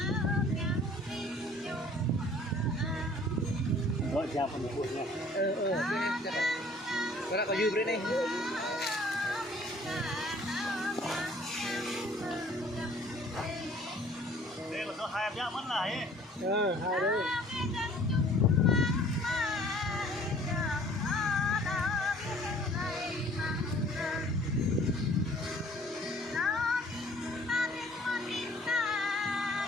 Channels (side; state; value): both; normal; correlation 0.54